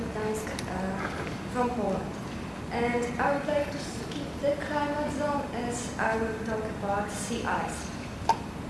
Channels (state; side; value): identical; both; correlation 1.00